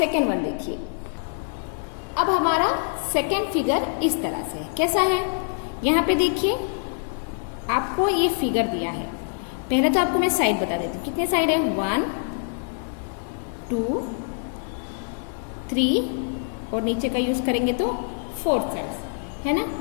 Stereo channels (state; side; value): silent; right; digital silence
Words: वन देखिए। अब हमारा सेकेंड फिगर इस तरह से कैसा है, यहाँ पे देखिए आपको ये फिगर दिया है। पहले तो आपको मैं साइड बता देती हूँ, कितने साइड है, 1 2 3 और नीचे का यूज करेंगे तो 4 साइड्स, है ना।